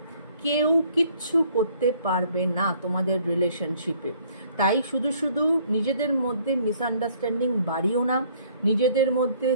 কেউ কিচ্ছু করতে পারবে না তোমাদের রিলেশনশিপে। তাই শুধু নিজেদের মধ্যে মিসআন্ডারস্ট্যান্ডিং বাড়িও না, নিজেদের মধ্যে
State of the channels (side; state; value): both; inverted; correlation -0.61